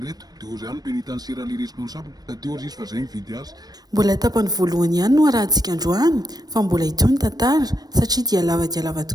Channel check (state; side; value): late; left; 0.19 ms